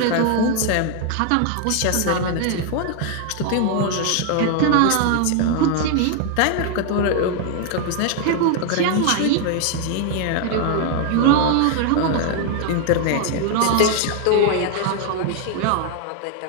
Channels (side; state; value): both; different; correlation 0.00